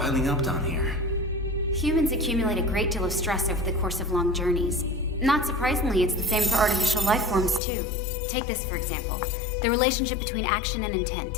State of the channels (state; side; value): drops out; right; at 7.6 s